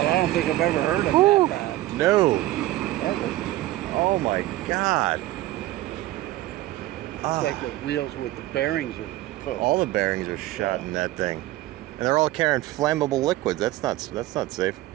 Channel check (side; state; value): left; quieter; 16.4 dB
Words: I don't think I've ever heard of that bad. No. Ever. Oh my God. It's like the wheels with the bearings are put. All the bearings are shot in that thing, and they're all carrying flammable liquids. That's not safe.